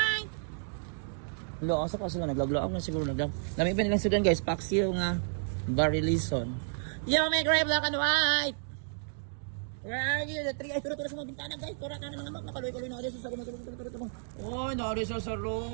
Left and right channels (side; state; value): left; silent; digital silence